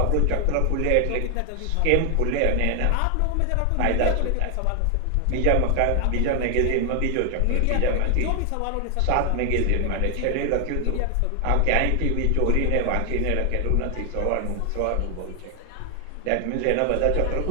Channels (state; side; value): different; both; correlation 0.00